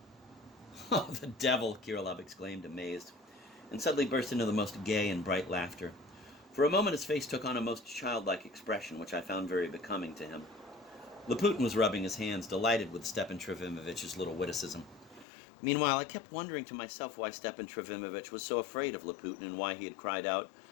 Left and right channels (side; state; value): right; drops out; at 15.2 s